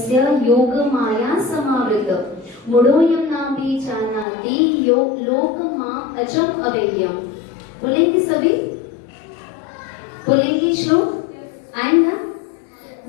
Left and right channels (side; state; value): right; drops out; at 4.2 s